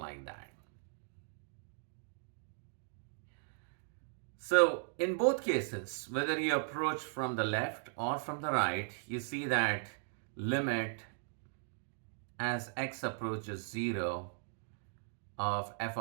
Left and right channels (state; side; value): silent; left; digital silence